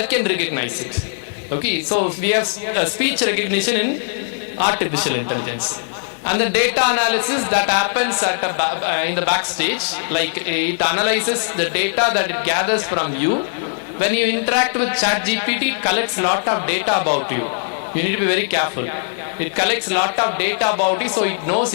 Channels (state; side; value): silent; right; digital silence